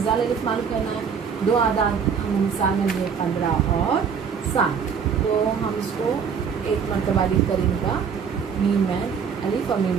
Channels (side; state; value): left; quieter; 6.7 dB